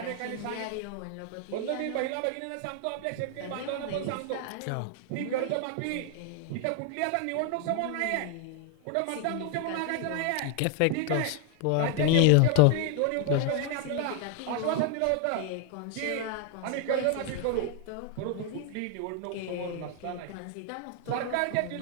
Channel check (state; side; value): different; both; correlation 0.00